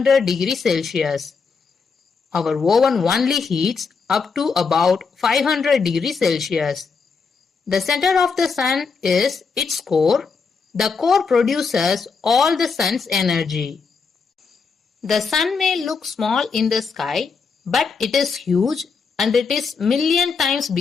degrees Celsius. Our oven only heats up to about 500 degrees Celsius. The center of the Sun is its core. The core produces all the Sun's energy. The Sun may look small in the sky, but it is huge and it is million times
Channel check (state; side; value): quieter; right; 5.2 dB